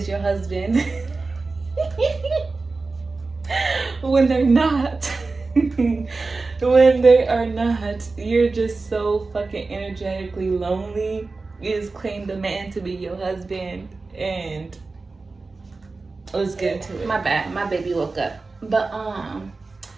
your husband when they're not. When they are not, you're just so fucking energetically lonely. You just claim the man to be your husband, and let's get into it. My bad, my baby woke up. But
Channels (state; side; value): quieter; left; 3.8 dB